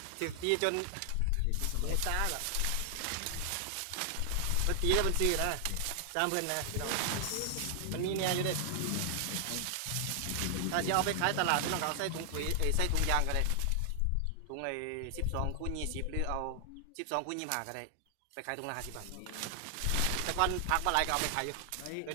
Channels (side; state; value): both; different; correlation 0.00